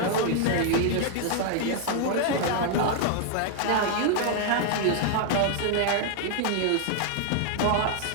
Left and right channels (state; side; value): different; both; correlation 0.00